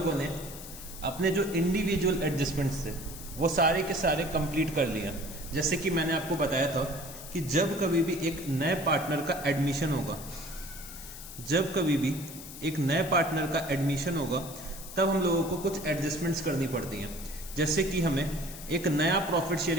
ने अपने जो इंडिविजुअल एडजस्टमेंट्स थे वो सारे के सारे कंप्लीट कर लिया। जैसे कि मैंने आपको बताया था कि जब कभी भी एक नए पार्टनर का एडमिशन होगा, जब कभी भी एक नए पार्टनर का एडमिशन होगा तब हम लोगों को कुछ एडजस्टमेंट्स करनी पड़ती हैं। जैसे कि हमें एक नया प्रॉफिट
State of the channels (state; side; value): noise; left; hiss, 13 dB below the sound